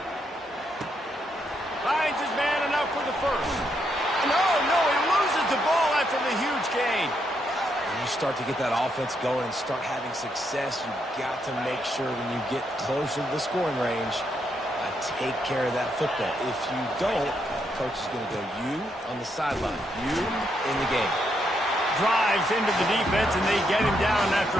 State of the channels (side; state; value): both; normal; correlation 0.78